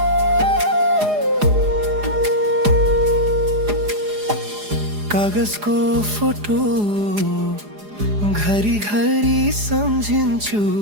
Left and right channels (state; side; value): late; left; 4.9 ms